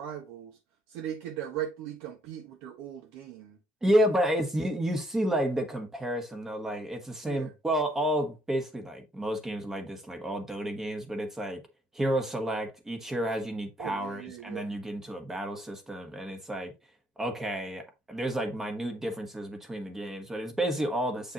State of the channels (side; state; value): both; normal; correlation 0.71